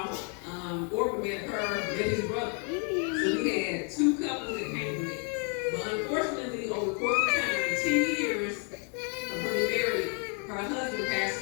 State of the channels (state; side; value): quieter; right; 39.6 dB